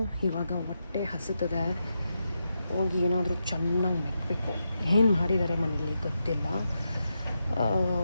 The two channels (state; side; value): inverted; both; correlation -0.86